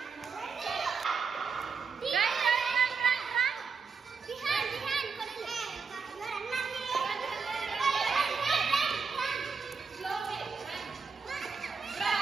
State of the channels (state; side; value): quieter; left; 5.3 dB